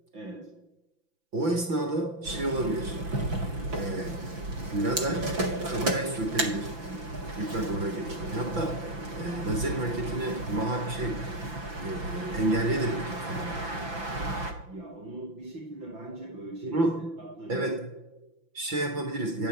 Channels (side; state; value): left; late; 5.9 ms